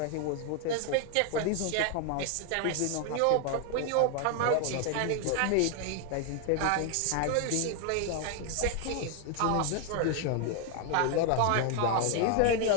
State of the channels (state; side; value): different; both; correlation 0.00